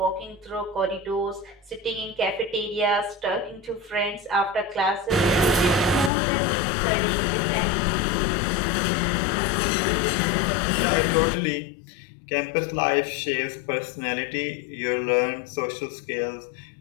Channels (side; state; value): right; drops out; at 6.1 s